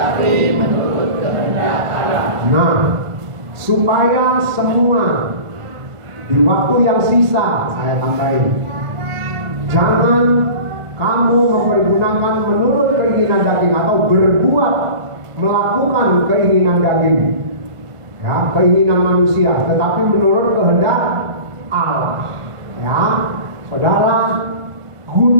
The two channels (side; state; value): left; late; 1.5 ms